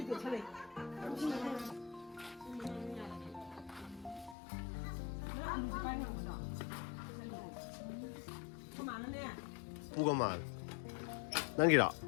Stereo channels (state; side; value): drops out; right; at 4.4 s